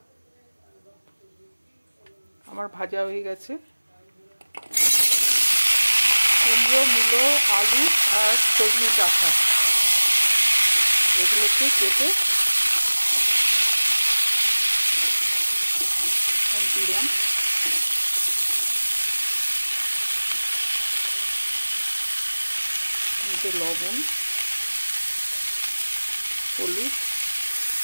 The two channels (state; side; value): inverted; both; correlation -1.00